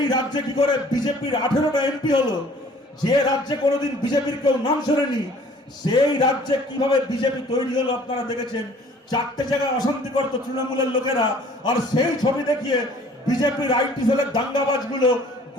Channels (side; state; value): both; normal; correlation 0.53